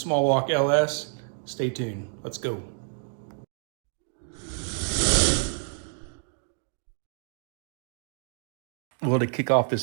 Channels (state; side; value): silent; left; 58 dB below the other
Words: walk LS. Stay tuned. Let's go. Well, to kick off